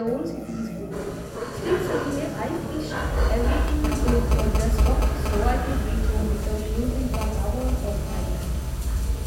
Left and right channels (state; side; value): identical; both; correlation 1.00